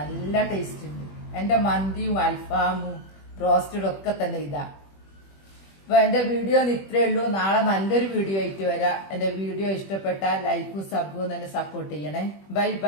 ടേസ്റ്റ് ഉണ്ട്. എന്റെ മന്തിയും അൽഫാമും റോസ്റ്റഡും ഒക്കെ തന്നെ ഇതാ. അപ്പൊ എന്റെ വീഡിയോ ഇത്രേ ഉള്ളൂ. നാളെ നല്ലൊരു വീഡിയോ ആയിട്ട് വരാം. എന്റെ വീഡിയോ ഇഷ്ടപ്പെട്ടാൽ ലൈക്കും സബും തന്നെ സപ്പോർട്ട് ചെയ്യണേ. Bye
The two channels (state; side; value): late; right; 21 ms